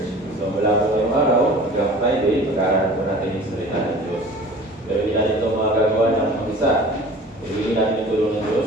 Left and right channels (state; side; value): normal; both; correlation 0.43